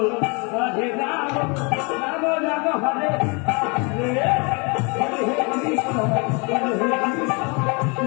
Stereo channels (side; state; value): right; quieter; 31.6 dB